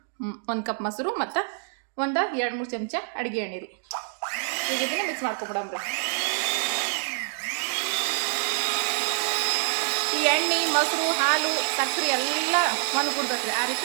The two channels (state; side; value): silent; left; 59 dB below the other